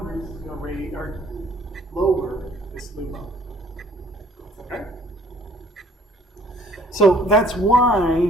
is going to raise or lower this LUMO. Okay? So that's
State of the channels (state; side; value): normal; both; correlation 0.58